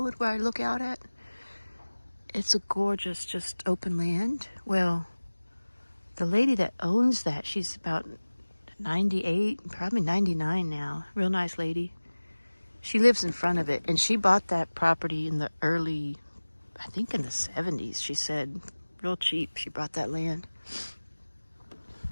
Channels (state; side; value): inverted; both; correlation -1.00